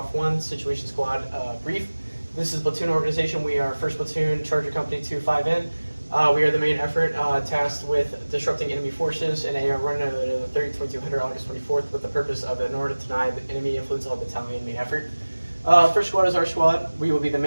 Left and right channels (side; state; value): both; inverted; correlation -1.00